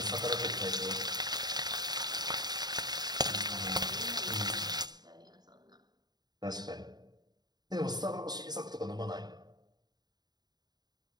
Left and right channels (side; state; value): left; late; 0.20 ms